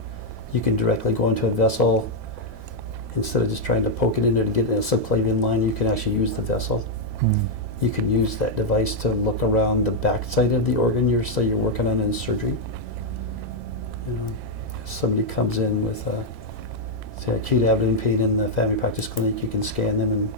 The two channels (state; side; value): late; left; 3.5 ms